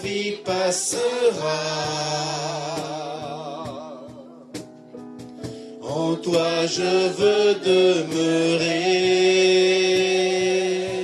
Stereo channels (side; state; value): both; identical; correlation 1.00